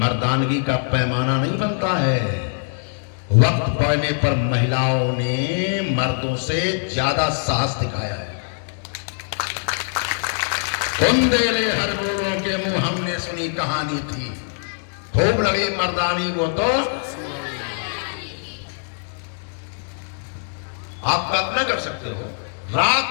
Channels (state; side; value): silent; right; digital silence